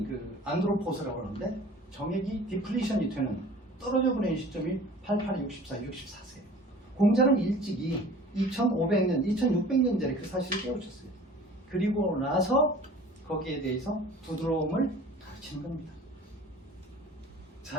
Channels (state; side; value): normal; both; correlation 0.45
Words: 그 안드로포스라고 하는데 정액이 디플리션이 되는 떨어져 버리는 시점이 88, 64, 64세예요. 공자는 일찍이 2500년, 2600년 전에 그 사실을 깨우쳤어요. 그리고 나서 거기에 대해서 부드러움을 가르치는 겁니다.